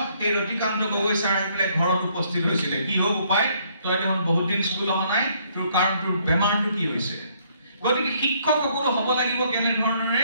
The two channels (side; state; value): both; inverted; correlation -0.67